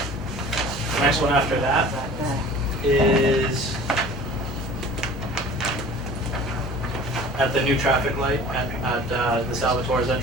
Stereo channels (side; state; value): both; normal; correlation 0.43